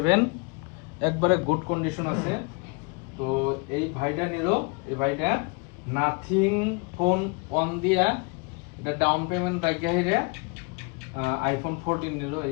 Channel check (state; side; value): quieter; right; 31.4 dB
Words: একবারে গুড কন্ডিশন আছে। তো এই ভাইটা নিল, এই ভাইটা নাথিং ফোন অন দিয়া এটা ডাউন পেমেন্ট রাখিয়া হিরে আইফোন 14 নিল,